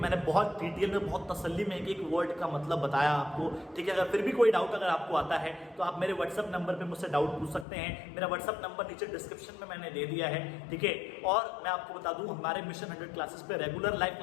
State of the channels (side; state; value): right; drops out; at 7.7 s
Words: बहुत डिटेल में, बहुत तसल्ली में एक वर्ड का मतलब बताया आपको, ठीक है। अगर फिर भी कोई डाउट अगर आपको आता है तो आप मेरे व्हाट्सएप नंबर पे मुझसे डाउट पूछ सकते हैं। मेरा व्हाट्सएप नंबर नीचे डिस्क्रिप्शन में मैंने दे दिया है, ठीक है। और मैं आपको बता दूं, हमारे मिशन 100 क्लासेस पे रेगुलर लाइव